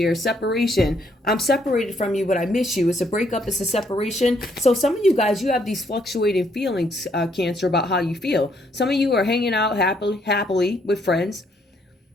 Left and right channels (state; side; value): normal; both; correlation 0.70